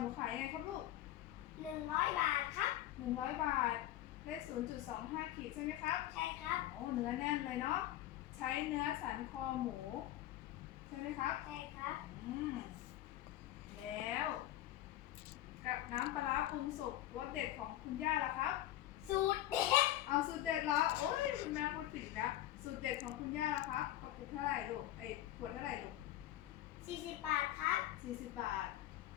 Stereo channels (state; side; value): quieter; right; 14.0 dB